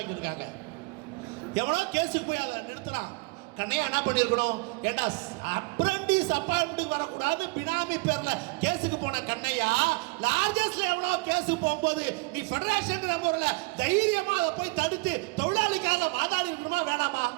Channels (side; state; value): left; quieter; 27.0 dB